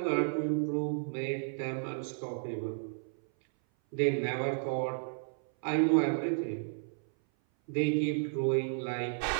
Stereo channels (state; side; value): silent; left; 56 dB below the other